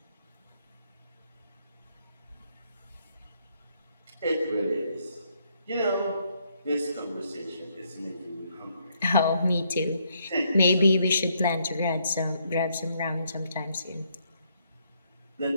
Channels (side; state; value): both; inverted; correlation -0.73